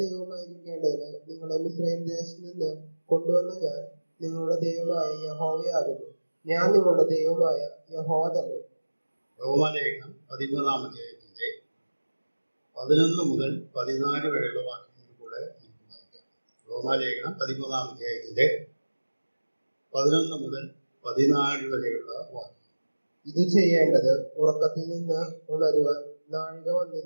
ദൈവമായിരിക്കേണ്ടതിന് നിങ്ങളെ മിസ്രയീം ദേശത്ത് നിന്ന് കൊണ്ടുവന്ന ഞാൻ നിങ്ങളുടെ ദൈവമായ യഹോവയാകുന്നു. ഞാൻ നിങ്ങളുടെ ദൈവമായ യഹോവ തന്നെ. റോമാലേഖനം 13-ാം അധ്യായത്തിന്റെ 11 മുതൽ 14 വരെയുള്ള വാക്യങ്ങൾ കൂടെ നമുക്ക് വായിക്കാം. റോമാലേഖനം 13-ാം അധ്യായത്തിന്റെ 11 മുതൽ 14 വരെയുള്ള വാക്യം. ഇത് ചെയ്യേണ്ടത് ഉറക്കത്തിൽ നിന്ന് ഉണരുവാൻ നാഴിക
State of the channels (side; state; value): both; inverted; correlation -1.00